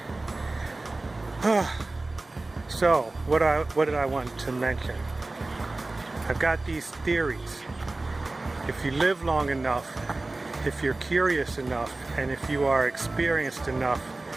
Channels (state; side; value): quieter; left; 3.1 dB